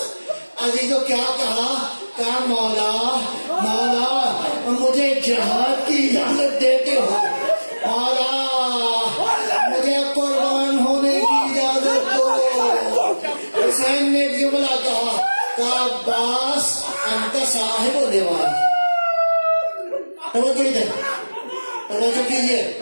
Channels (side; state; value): both; inverted; correlation -1.00